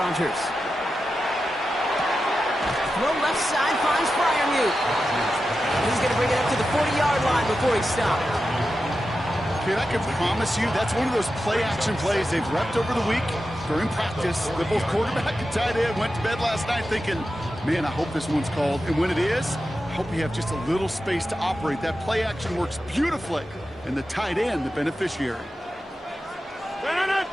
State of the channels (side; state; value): both; normal; correlation 0.91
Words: Throw left side finds Freiermuth. He's going to bring it up to the 40-yard line before he stopped. Kid, I can promise you that's one of those play-action plays they've repped over the week during practice. The both quarterback and tight end went to bed last night thinking, man, I hope this one's called. And when it is, I hope you have just a little space to operate. That play action works beautifully, and the tight end, the beneficiary.